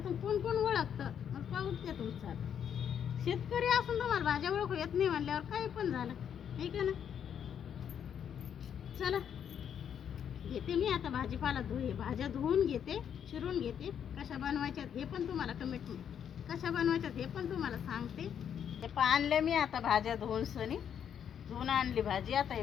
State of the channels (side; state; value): right; quieter; 8.6 dB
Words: कोण कोण ओळखतं मग पाहूच द्या तुमचं. शेतकरी असून तुम्हाला भाज्या ओळखू येत नाही म्हणल्यावर काही पण झालं, आहे का ना? चला घेते मी आता भाजीपाला भाज्या धुवून घेते, चिरून घेते. कशा बनवायच्यात हे पण तुम्हाला कशा बनवायच्यात हे पण तुम्हाला सांगते. हे आणले मी आता भाज्या धुवून सनी. धुवून आणली भाजी. आता ही